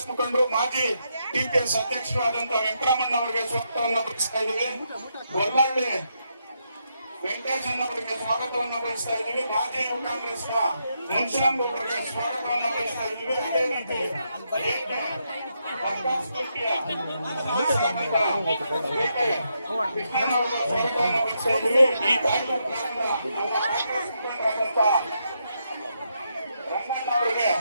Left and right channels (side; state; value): both; inverted; correlation -0.80